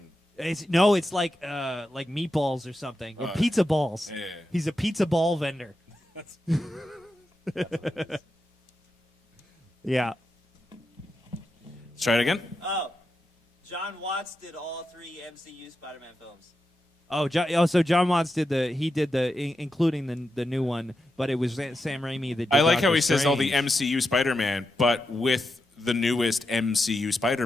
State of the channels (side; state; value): both; normal; correlation 0.88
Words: It's like meatballs or something, or pizza balls. Yeah. He's a pizza ball vendor. Yeah. Let's try it again. Oh. John Watts did all 3 MCU Spider-Man films. So John Watts did including the new one, but it was Sam Raimi that did I like Doctor how he says all the Strange. MCU Spider-Man, but with the newest MCU